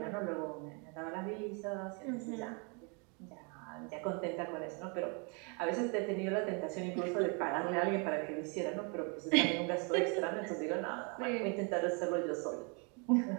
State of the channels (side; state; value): left; quieter; 34.4 dB